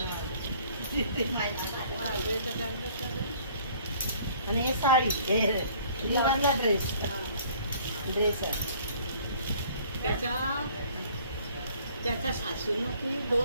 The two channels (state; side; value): inverted; both; correlation -0.55